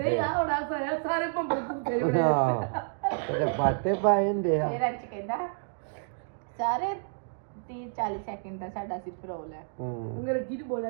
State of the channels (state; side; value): silent; left; digital silence